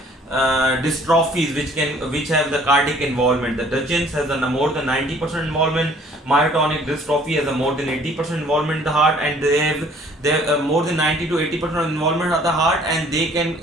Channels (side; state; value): both; normal; correlation 0.56